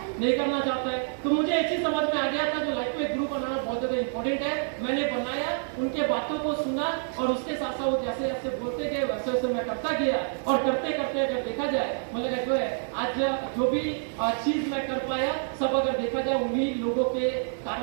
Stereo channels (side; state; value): left; silent; digital silence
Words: नहीं करना चाहता है। तो मुझे एक चीज समझ में आ गया था, जो लाइफ में ग्रुप बनाना बहुत ज्यादा इंपॉर्टेंट है। मैंने बनाया, उनके बातों को सुना, और उसके साथ साथ वो जैसे जैसे बोलते गए वैसे वैसे मैं करता गया, और करते करते अगर देखा जाए मतलब जो है आज जो भी चीज मैं कर पाया सब अगर देखा जाए उन्हीं लोगों के